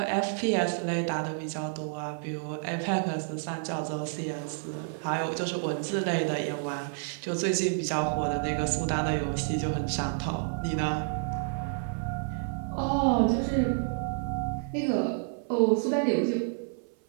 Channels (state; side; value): silent; left; 56 dB below the other